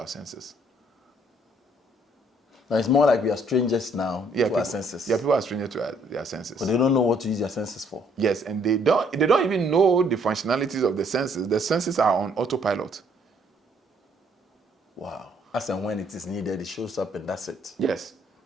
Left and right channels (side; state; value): both; normal; correlation 0.65